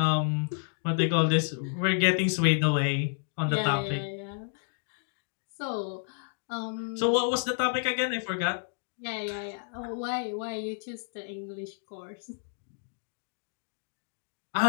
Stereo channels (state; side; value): silent; right; digital silence